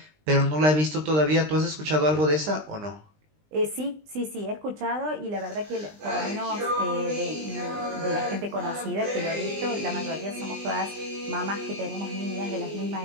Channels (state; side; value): late; left; 20 ms